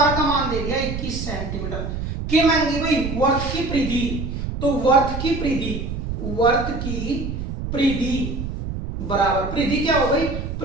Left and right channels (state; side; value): noise; right; rumble, 5 dB below the sound